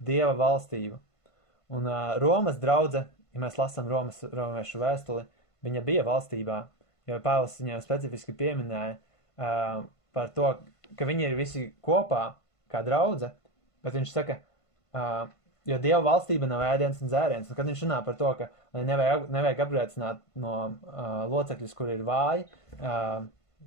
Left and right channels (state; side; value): late; right; 1.5 ms